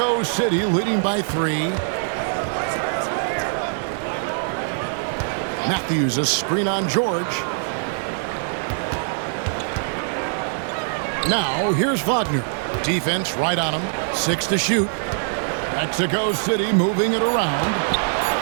City leading by 3. Matthews, a screen on George. Now, here's Wagner. Defense right on him. 6 to shoot. Mexico City moving it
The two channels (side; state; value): left; silent; 58 dB below the other